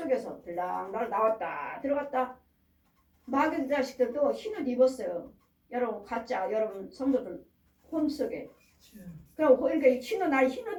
들랑달랑 나왔다 들어갔다. 마귀 자식들도 흰 옷 입었어요. 여러분 가짜 여러분 성도들 혼 속에. 그럼 그러니까 흰 옷 날 흰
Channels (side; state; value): both; identical; correlation 1.00